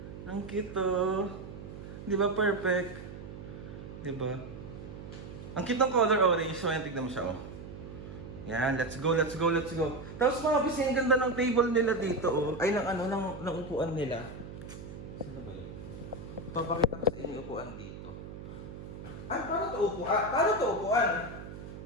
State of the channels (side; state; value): right; noise; hum, 12 dB below the sound